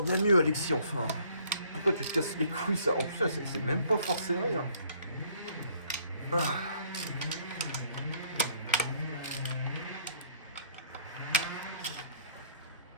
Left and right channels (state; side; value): inverted; both; correlation -0.62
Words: mieux Alexis enfin. Pourquoi tu te casses les couilles ça? En plus c'est même pas forcé rien.